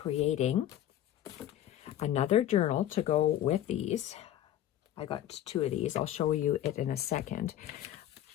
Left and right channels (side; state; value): right; quieter; 12.0 dB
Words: another journal to go with these. I got 2 of these. I'll show you it in a second.